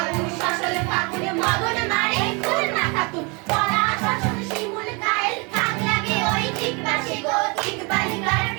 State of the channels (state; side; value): quieter; left; 30.3 dB